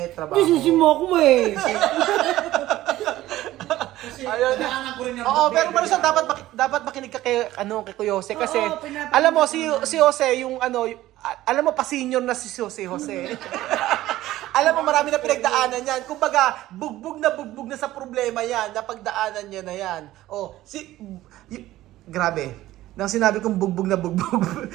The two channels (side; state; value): left; quieter; 15.4 dB